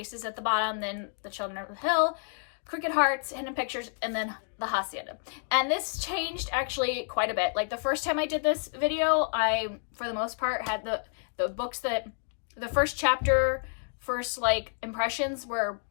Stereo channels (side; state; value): right; silent; digital silence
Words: at the bottom, then The Children of the Hill, Crooked Hearts, Hidden Pictures, and then The Hacienda. And this changed actually quite a bit. Like the first time I did this video, I, for the most part, had the books that, the first chapter, first like impressions were